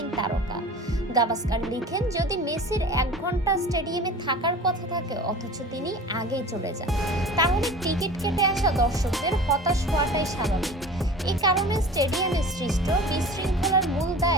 তারকা। গাভাস্কার লিখেন, যদি মেসির 1 ঘন্টা স্টেডিয়ামে থাকার কথা থাকে অথচ তিনি আগেই চলে যান, তাহলে টিকিট কেটে আসা দর্শকদের হতাশ হওয়াটাই স্বাভাবিক। এই কারণে স্টেডিয়ামে সৃষ্ট বিশৃঙ্খলার মূল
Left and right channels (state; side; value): normal; both; correlation 0.39